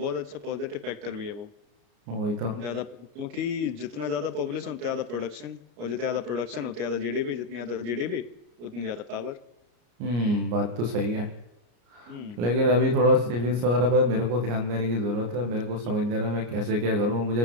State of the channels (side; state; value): left; late; 34 ms